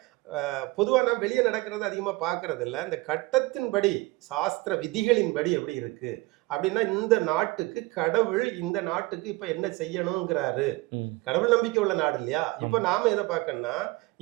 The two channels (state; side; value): quieter; left; 22.2 dB